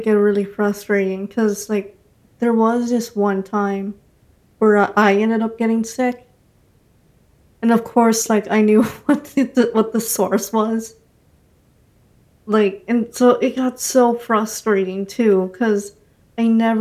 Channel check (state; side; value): identical; both; correlation 1.00